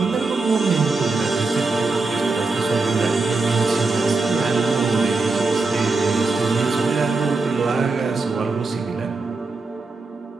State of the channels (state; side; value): quieter; left; 3.7 dB